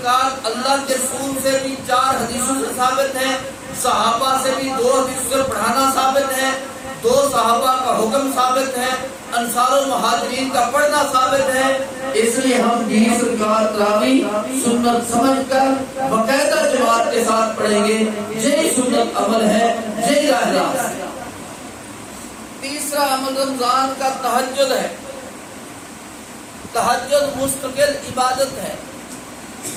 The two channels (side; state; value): both; identical; correlation 1.00